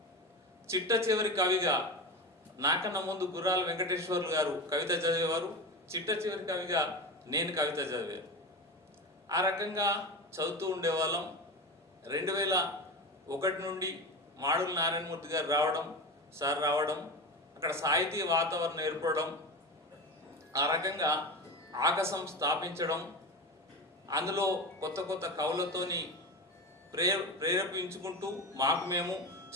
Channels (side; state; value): both; normal; correlation 0.25